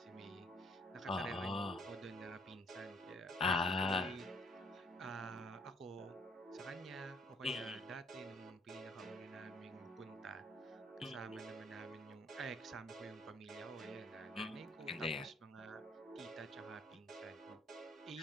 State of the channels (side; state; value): both; normal; correlation 0.63